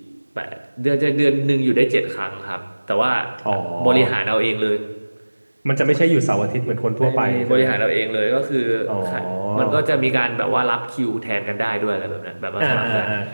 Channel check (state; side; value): inverted; both; correlation -1.00